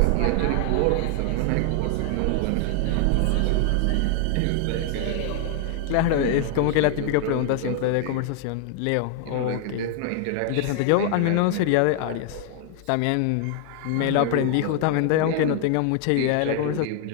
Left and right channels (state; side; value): different; both; correlation 0.00